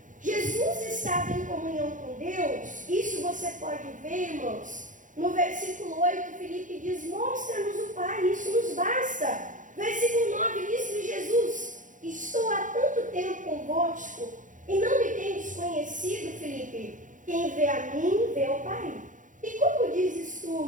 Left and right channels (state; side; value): late; left; 0.37 ms